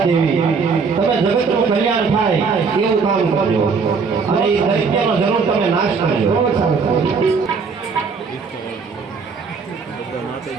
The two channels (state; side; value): quieter; left; 5.2 dB